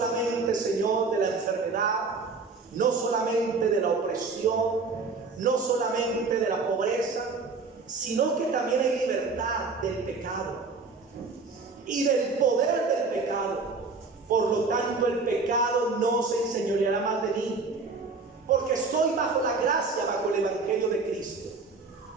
Señor, de la enfermedad, no solamente de la opresión, no solamente de la pobreza, sino que también hay libertad del pecado y del poder del pecado. Por lo tanto, el pecado no se enseñoreará más de mí, porque estoy bajo la gracia, bajo el Evangelio de Cristo.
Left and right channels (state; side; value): quieter; left; 4.2 dB